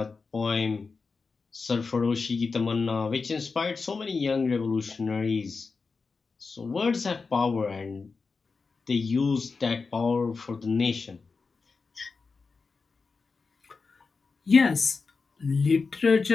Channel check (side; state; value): right; quieter; 4.6 dB